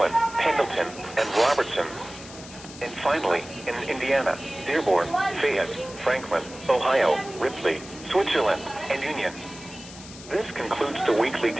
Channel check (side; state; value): left; noise; hiss, 16 dB below the sound